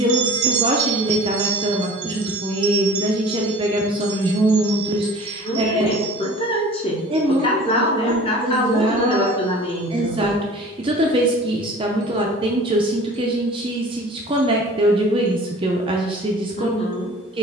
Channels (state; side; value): normal; both; correlation 0.44